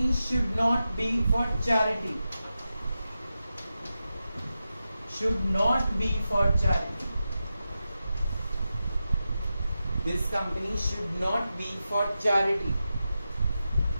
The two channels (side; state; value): both; inverted; correlation -0.91